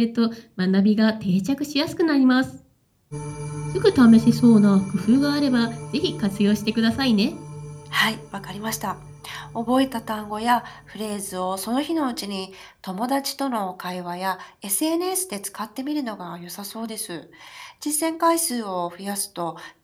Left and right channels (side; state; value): both; identical; correlation 1.00